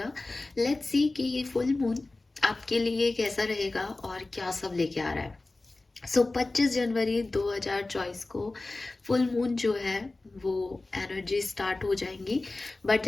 लेट्स सी कि ये फुल मून आपके लिए कैसा रहेगा और क्या सब लेके आ रहा है। 25 जनवरी 2024 को फुल मून जो है वो एनर्जी स्टार्ट हो जाएंगी। बट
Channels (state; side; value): quieter; right; 3.1 dB